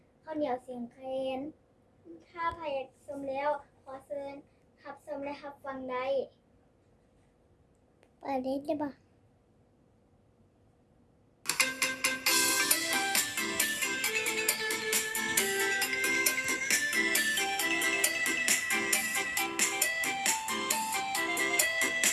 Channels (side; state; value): both; identical; correlation 1.00